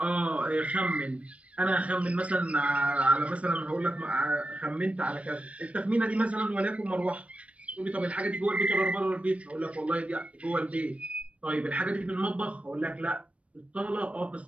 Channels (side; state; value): left; late; 0.063 ms